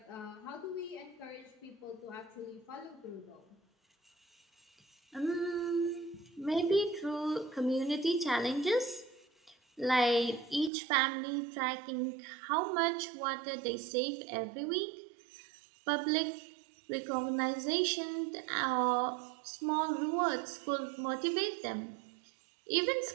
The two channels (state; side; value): drops out; left; at 10.7 s